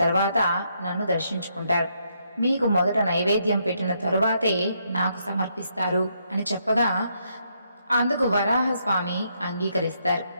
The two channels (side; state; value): both; inverted; correlation -0.76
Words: తర్వాత నన్ను దర్శించుకుంటారు. మీకు మొదట నైవేద్యం పెట్టిన తరువాతే నాకు సమర్పిస్తారు అని చెప్పగా అందుకు వరాహస్వామి అంగీకరిస్తారు.